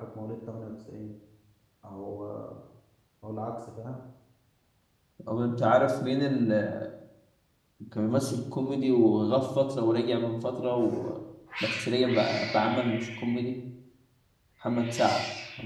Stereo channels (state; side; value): identical; both; correlation 1.00